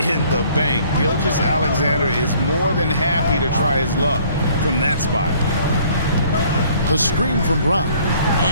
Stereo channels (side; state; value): both; inverted; correlation -0.58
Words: the bank. Gilgeous-Alexander is more than happy to try his luck from that spot. The screen from Brown.